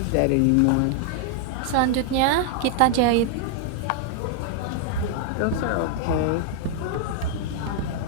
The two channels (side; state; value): both; different; correlation 0.00